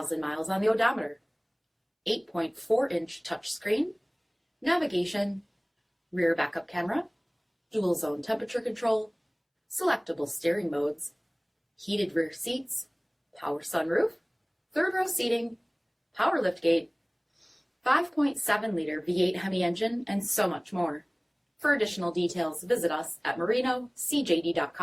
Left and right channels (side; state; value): both; identical; correlation 1.00